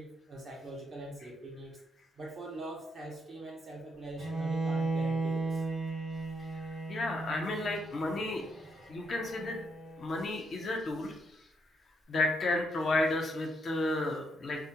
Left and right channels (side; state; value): both; normal; correlation 0.77